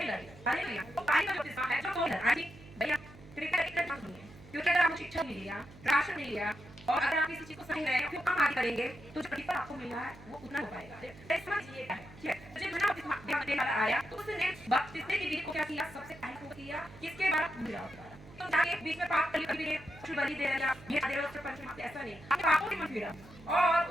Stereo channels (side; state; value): right; noise; hum, 20 dB below the sound